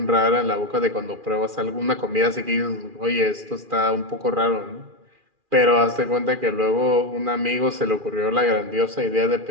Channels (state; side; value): late; left; 2.4 ms